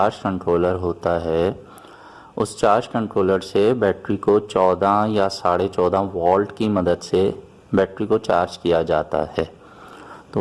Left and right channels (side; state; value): both; identical; correlation 1.00